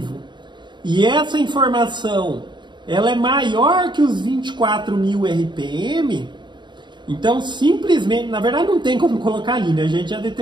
e essa informação ela é maior que os 24.000 RPM, então simplesmente, na verdade não tem como colocar ali, né? A gente já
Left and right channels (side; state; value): left; late; 0.22 ms